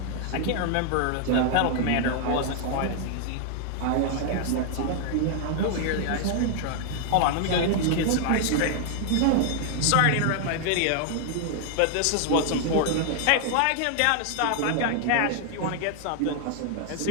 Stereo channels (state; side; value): different; both; correlation 0.00